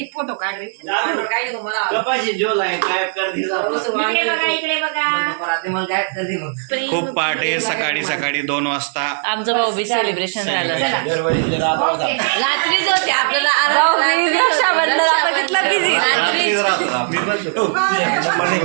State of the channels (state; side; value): silent; left; digital silence